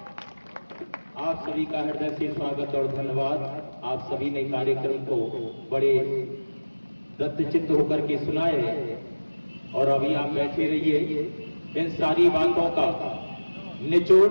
आप सभी का हृदय से स्वागत और धन्यवाद। आप सभी ने कार्यक्रम को बड़े दत्तचित्त होकर के सुनाए और अभी आप बैठे रहिए। इन सारी बातों का निचोड़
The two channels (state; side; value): inverted; both; correlation -1.00